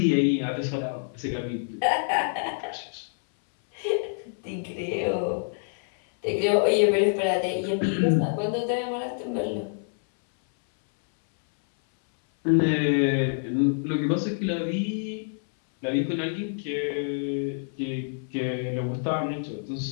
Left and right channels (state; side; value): silent; right; 60 dB below the other